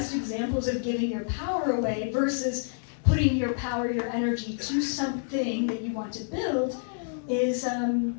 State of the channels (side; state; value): right; silent; 59 dB below the other